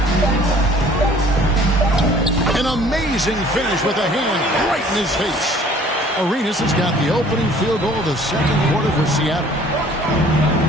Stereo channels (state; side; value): normal; both; correlation 0.53